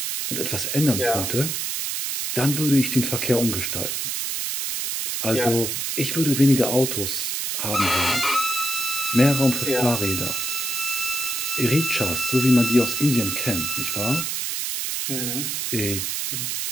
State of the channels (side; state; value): right; noise; hiss, 2 dB below the sound